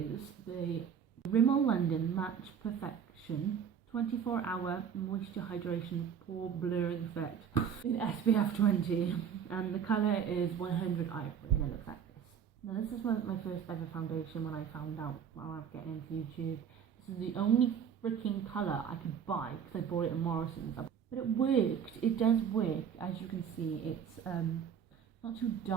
the Rimmel London Match Perfection 24-hour moisture hydration pore blurring effect in SPF 20, and the colour is 100 Ivory, and it looks like this. Now this is my first ever foundation when I found out while I was getting into YouTube. This is the only freaking colour I could buy because I bought it in Morrison's, but it worked. It does work, as you can see. It's not too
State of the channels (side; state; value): left; quieter; 7.9 dB